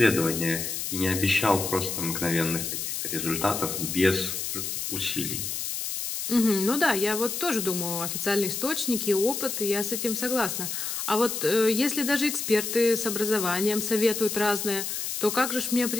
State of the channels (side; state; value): left; noise; hiss, 3 dB below the sound